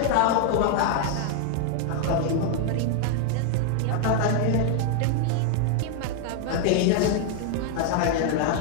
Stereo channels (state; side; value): different; both; correlation 0.00